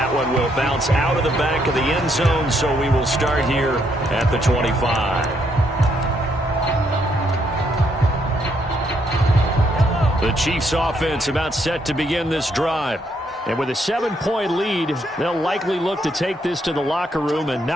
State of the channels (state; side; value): normal; both; correlation 0.74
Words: one will bounce out of the back of the end zone, so we will start here at the 25. The Chiefs offense about set to begin this drive. And with a 7-point lead, they'll likely look to take this to the locker room and